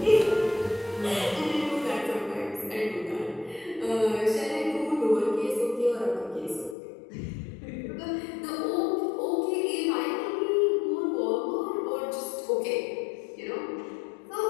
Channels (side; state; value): right; drops out; at 6.8 s